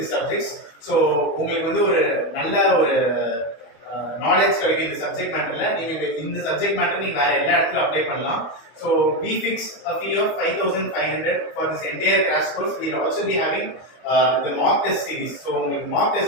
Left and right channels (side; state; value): right; late; 25 ms